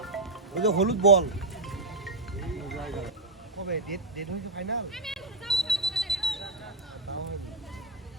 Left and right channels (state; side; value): quieter; left; 3.0 dB